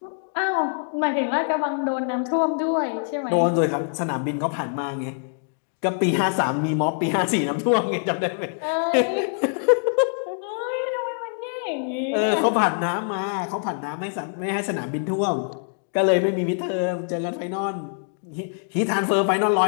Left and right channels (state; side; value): silent; right; digital silence